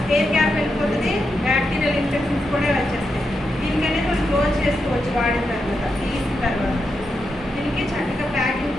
ఎయిర్ గ్యాప్ వెళ్ళిపోతుంది, బ్యాక్టీరియల్ ఇన్ఫెక్షన్స్ కూడా వచ్చేస్తాయి. దీనికనేది మనం క్లోజ్ చేసుకోవచ్చు వాడిన తర్వాత.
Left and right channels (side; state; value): both; normal; correlation 0.85